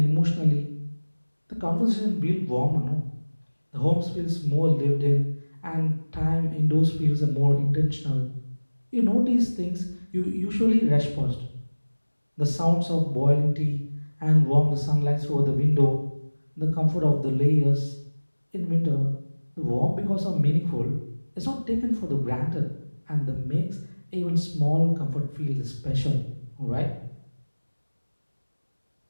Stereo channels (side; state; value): both; inverted; correlation -1.00